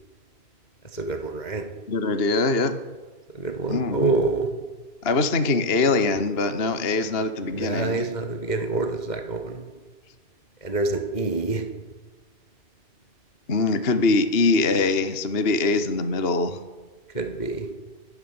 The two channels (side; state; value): right; late; 2.8 ms